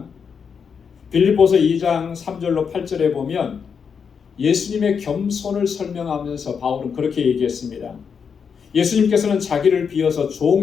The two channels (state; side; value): quieter; right; 6.5 dB